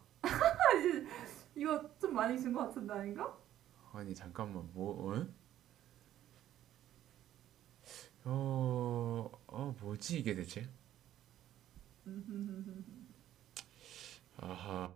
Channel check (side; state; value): left; quieter; 12.2 dB